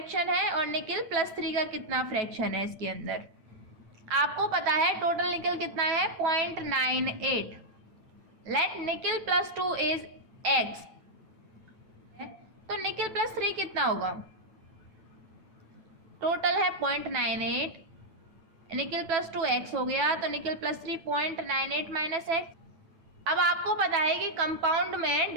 है और निकल +3 का कितना फ्रैक्शन है इसके अंदर। आपको पता है टोटल निकल कितना है? 0.98। लेट निकल +2 इज X, तो निकल +3 कितना होगा? टोटल है 0.98, निकल +2 X हो गया, तो निकल +3 0.98 - X। अब आपको पता है कि कंपाउंड में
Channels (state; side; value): late; left; 9.1 ms